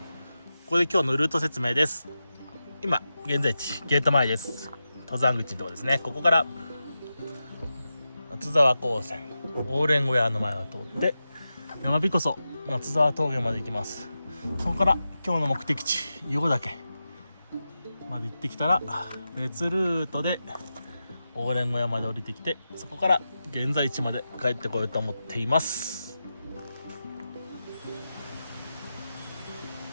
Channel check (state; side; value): inverted; both; correlation -0.91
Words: ここで今日のルート説明です。今現在地ゲート前です。登山口のとこですね。ここから松沢高専オーレン小屋の前を通って山びこそ松沢峠まで行きます。そこから今日の目的地硫黄岳まで行ってきたら別ルートでオーレン小屋まで降りてきて、そこから現在地まで帰ってこようと思っています。